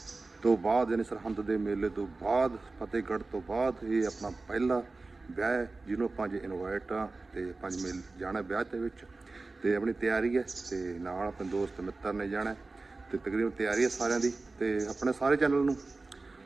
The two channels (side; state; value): left; quieter; 3.5 dB